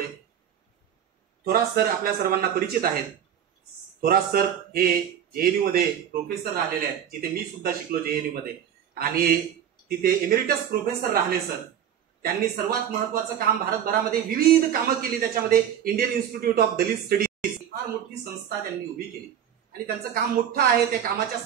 थोरात सर आपल्या सर्वांना परिचित आहेत. थोरात सर हे जेएनयू मध्ये प्रोफेसर राहिलेले आहेत, जिथे मी सुद्धा शिकलो जेएनयू मध्ये, आणि तिथे एमेरिटस प्रोफेसर राहिले सर. त्यांनी सर्वात महत्वाचं काम भारतभरामध्ये विविध कामं केली. त्याच्यामध्ये Indian institute of Dalit studies फार मोठी संस्था त्यांनी उभी केली आणि त्यांचं काम मोठं आहे. त्या कामाच्या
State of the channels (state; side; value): quieter; left; 9.4 dB